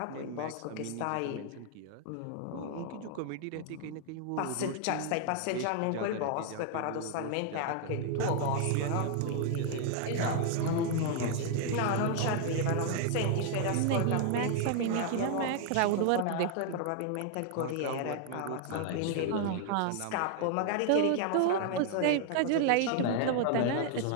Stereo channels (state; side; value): different; both; correlation 0.00